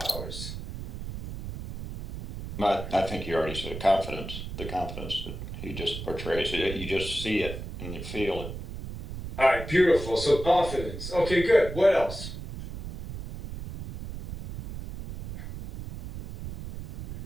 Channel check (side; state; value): right; noise; rumble, 9 dB below the sound